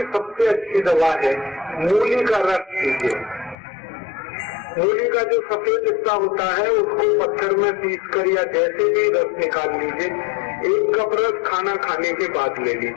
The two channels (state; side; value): drops out; right; at 3.6 s